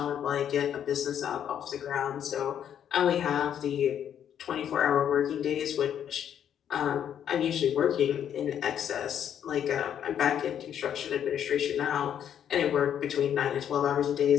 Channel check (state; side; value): quieter; right; 9.4 dB